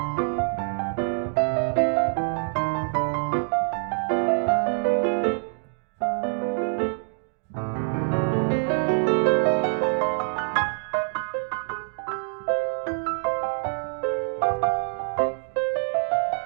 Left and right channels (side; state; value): left; silent; digital silence